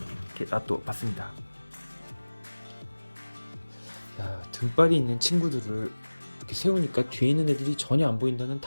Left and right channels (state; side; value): inverted; both; correlation -1.00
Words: 이렇게 놔둬봤습니다. 야, 등발이 있는 친구들을 이렇게 세우니까 뒤에 있는 애들이 전혀 안 보인다는